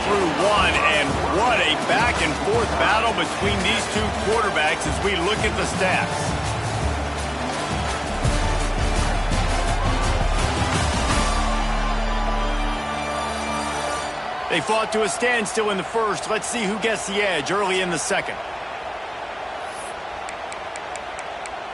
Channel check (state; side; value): identical; both; correlation 1.00